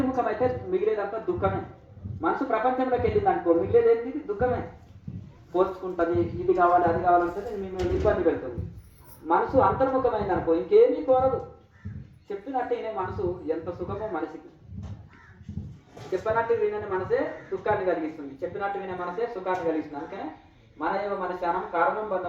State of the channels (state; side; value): identical; both; correlation 1.00